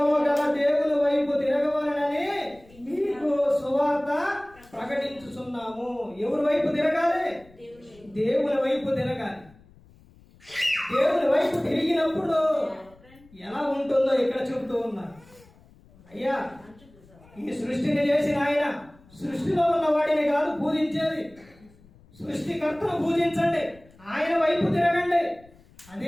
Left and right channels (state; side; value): noise; left; rumble, 27 dB below the sound